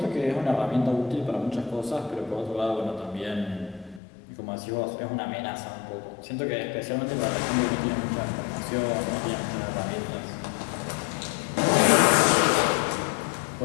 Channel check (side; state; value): right; drops out; at 4.0 s